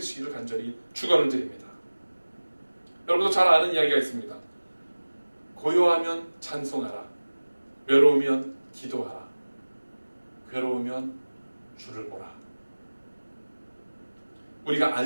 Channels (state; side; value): inverted; both; correlation -1.00